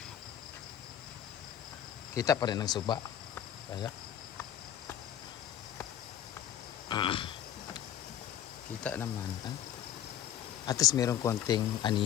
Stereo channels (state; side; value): quieter; right; 10.6 dB